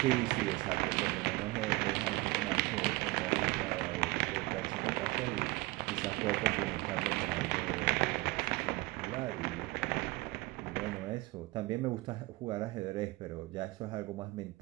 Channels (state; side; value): quieter; left; 21.4 dB